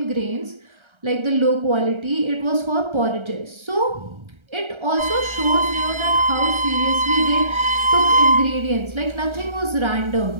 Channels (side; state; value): left; late; 1.3 ms